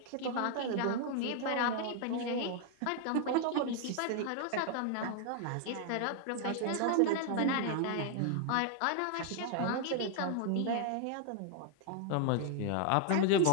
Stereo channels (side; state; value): both; different; correlation 0.00